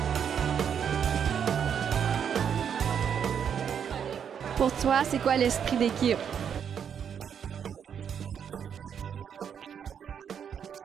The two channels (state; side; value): quieter; left; 7.9 dB